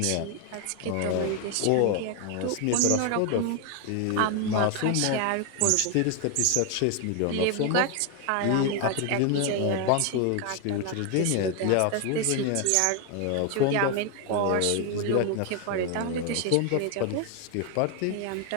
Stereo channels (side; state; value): both; different; correlation 0.01